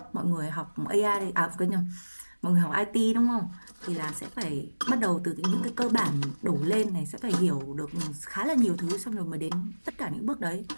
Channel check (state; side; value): inverted; both; correlation -1.00